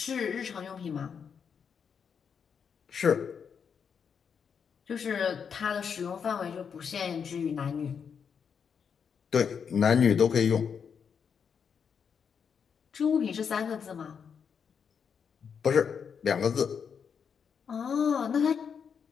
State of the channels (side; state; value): right; quieter; 6.8 dB